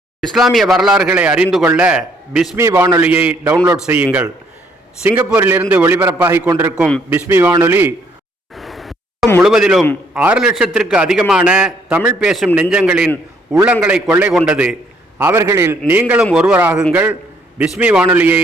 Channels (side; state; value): both; normal; correlation 0.67